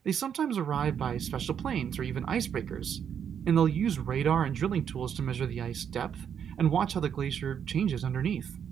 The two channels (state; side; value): quieter; left; 8.2 dB